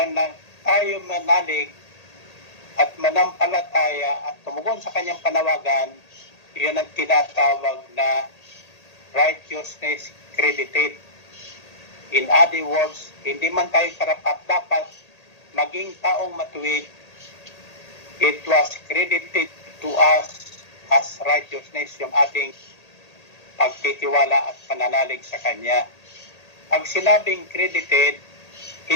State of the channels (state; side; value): late; right; 1.8 ms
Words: tayo manalig at manampalataya at tumugon sa kanyang panawagan, iyon ang tinatawag na righteousness credited. In other words, hindi man tayo karapat-dapat maging taong matuwid, it was credited to us as righteousness yung ating pagtitiwala at pananalig sa Kanya. Pag sinabing credited,